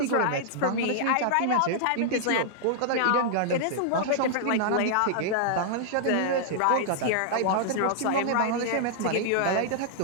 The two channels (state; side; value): different; both; correlation -0.01